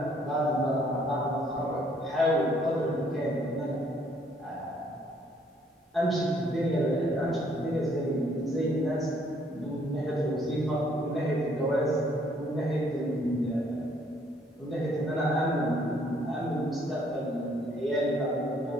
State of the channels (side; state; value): both; normal; correlation 0.65